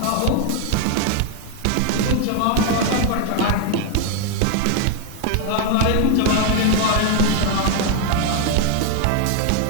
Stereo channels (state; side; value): different; both; correlation 0.01